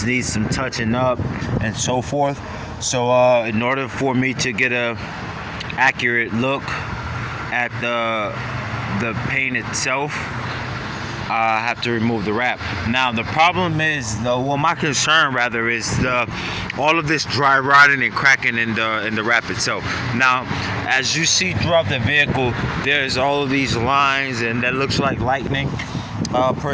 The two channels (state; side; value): identical; both; correlation 1.00